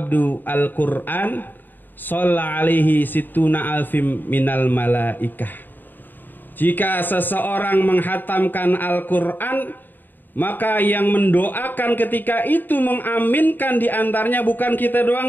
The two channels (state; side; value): late; right; 0.091 ms